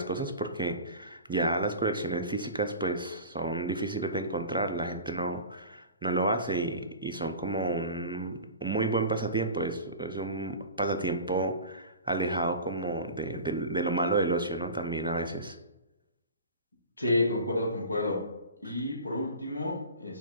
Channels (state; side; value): inverted; both; correlation -0.36